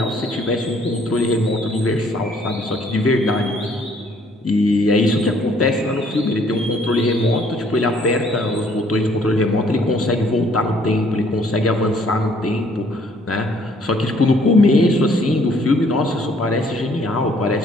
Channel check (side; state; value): both; normal; correlation 0.62